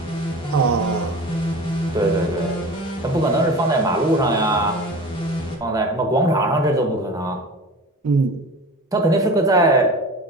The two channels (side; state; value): both; normal; correlation 0.35